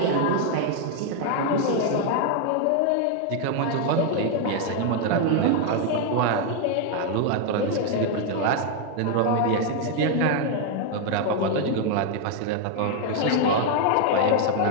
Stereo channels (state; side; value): different; both; correlation 0.00